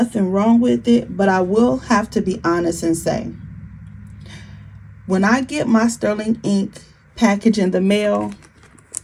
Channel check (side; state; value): both; identical; correlation 1.00